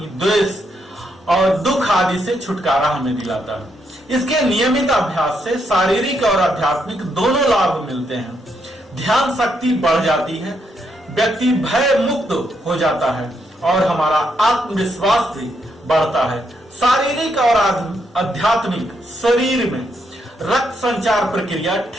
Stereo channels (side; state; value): both; normal; correlation 0.78